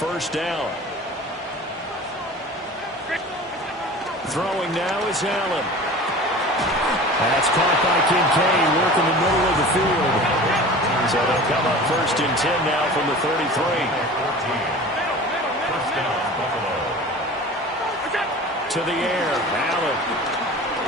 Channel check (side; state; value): both; normal; correlation 0.38